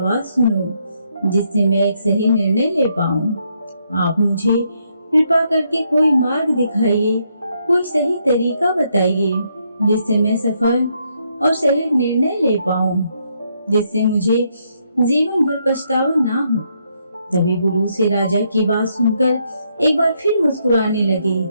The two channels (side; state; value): both; inverted; correlation -0.75